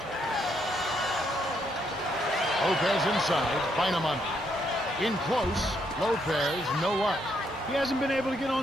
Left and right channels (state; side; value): normal; both; correlation 0.75